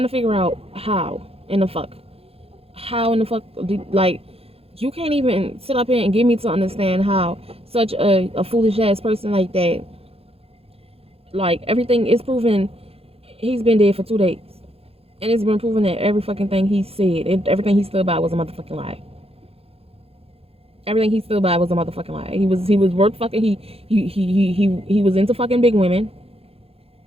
to figure out how in the fuck. How in the fuck, like, you can't even sit up here and get me to understand how such a foolish ass person like that, like, everything is proven. He's been dead for 2 days. And it's been proven that every fucking thing he said, everything he stood by was a motherfucking lie. Everything he stood by was a motherfucking lie. He was worth fucking, he was into fucking big women.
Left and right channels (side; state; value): left; late; 0.28 ms